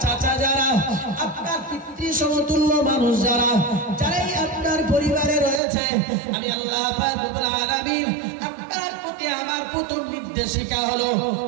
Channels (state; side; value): drops out; left; at 5.6 s